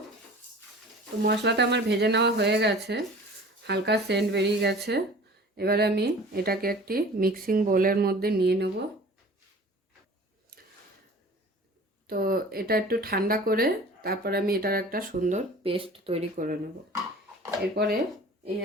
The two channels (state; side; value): normal; both; correlation 0.43